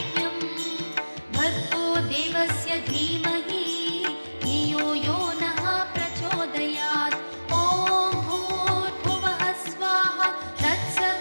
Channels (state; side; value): inverted; both; correlation -1.00